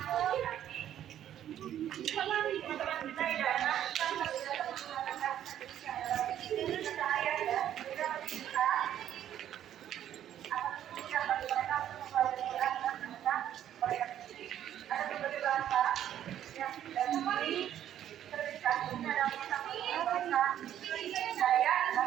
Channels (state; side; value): quieter; left; 11.0 dB